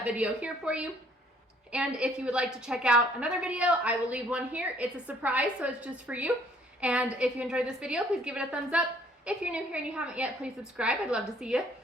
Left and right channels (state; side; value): normal; both; correlation 0.61